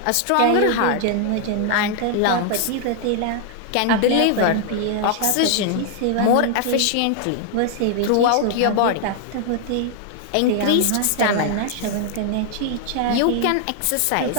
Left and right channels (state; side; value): different; both; correlation 0.00